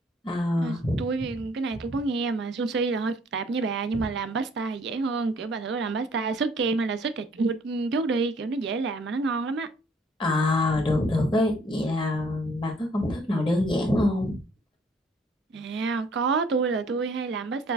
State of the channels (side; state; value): both; normal; correlation 0.60